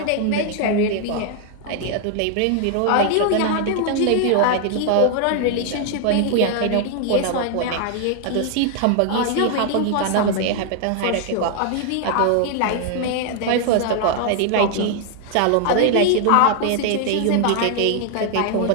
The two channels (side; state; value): both; different; correlation 0.00